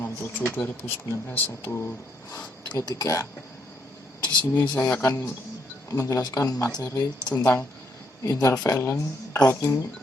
67/2019-133. Di sini saya akan menjelaskan materi tentang intervalent routing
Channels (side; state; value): both; normal; correlation 0.73